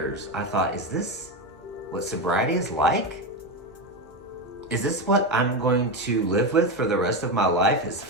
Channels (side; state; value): both; normal; correlation 0.14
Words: I thought, is this what sobriety is like? Is this what I'm going to live with for the rest of my life, is